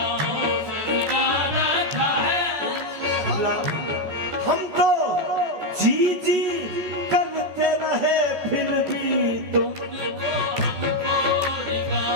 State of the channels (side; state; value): left; late; 14 ms